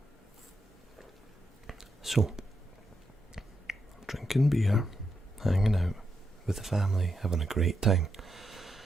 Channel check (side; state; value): both; normal; correlation 0.83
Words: so drinking beer, hanging out with the family, having a great time.